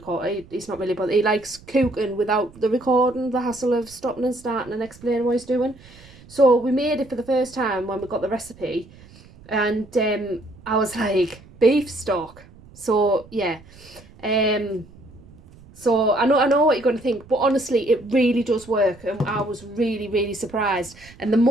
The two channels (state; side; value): noise; right; rumble, 23 dB below the sound